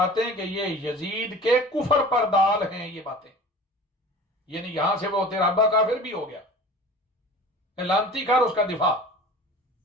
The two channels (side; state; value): both; normal; correlation 0.40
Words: ہیں کہ یہ یزید کے کفر پر دال ہیں یہ باتیں یعنی یہاں سے وہ تیرا ابا کافر بھی ہو گیا لانتی کر اس کا دفاع